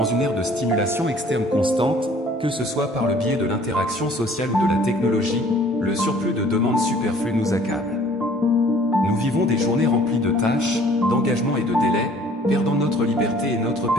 une ère de stimulation externe constante, que ce soit par le biais de l'interaction sociale ou de la technologie, le surplus de demandes superflues nous accable. Nous vivons des journées remplies de tâches, d'engagements et de délais, perdant notre liberté et notre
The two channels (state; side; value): normal; both; correlation 0.54